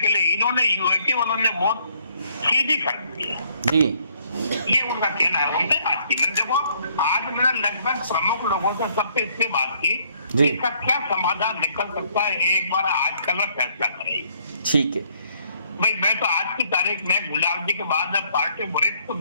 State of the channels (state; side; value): inverted; both; correlation -0.66